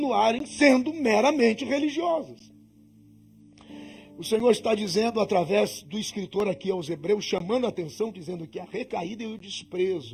sendo meramente religiosos. O Senhor está dizendo através do escritor aqui aos Hebreus, chamando a atenção, dizendo que a recaída e o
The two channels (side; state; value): both; identical; correlation 1.00